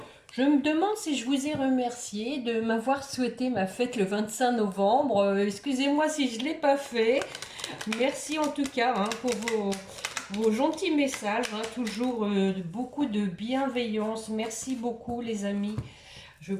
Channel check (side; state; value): both; identical; correlation 1.00